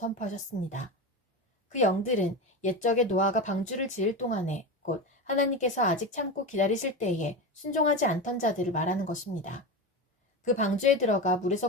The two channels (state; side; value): normal; both; correlation 0.21